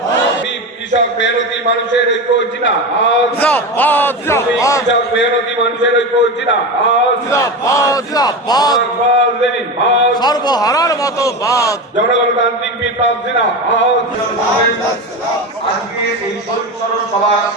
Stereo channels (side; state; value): both; normal; correlation 0.22